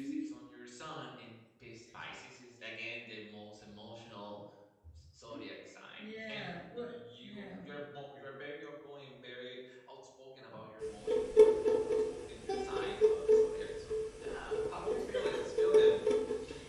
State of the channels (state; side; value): identical; both; correlation 1.00